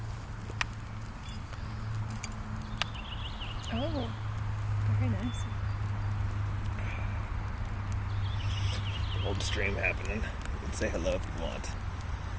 Oh, very nice. Old stream happening. You can say hello if you want.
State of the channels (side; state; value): both; identical; correlation 1.00